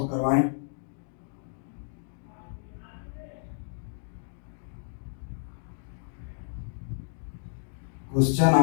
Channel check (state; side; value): silent; right; digital silence